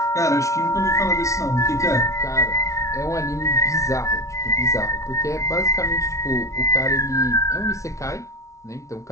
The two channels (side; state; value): right; late; 0.15 ms